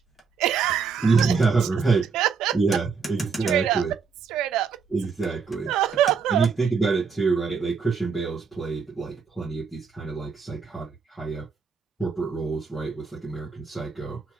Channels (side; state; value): left; quieter; 5.5 dB